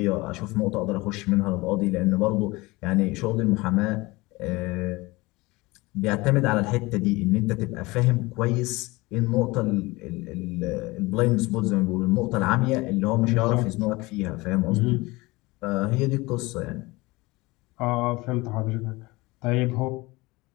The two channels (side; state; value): right; quieter; 22.4 dB